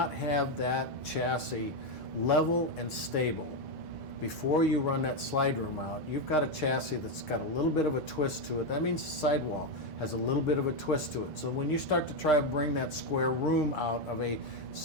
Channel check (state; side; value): normal; both; correlation 0.06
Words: have that chassis level and stable before you run that slide room out, you've got a chassis that's got a little bit of a twist to it. That means the sidewall has a little bit of a twist to it. So when you start to try to bring that square room out of a